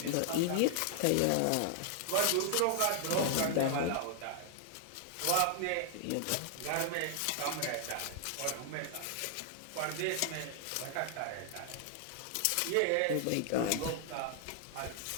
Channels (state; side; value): different; both; correlation 0.00